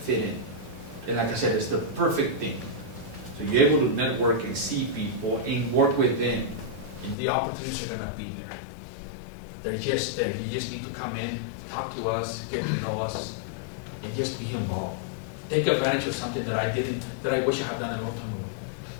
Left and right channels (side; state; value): right; drops out; at 7.2 s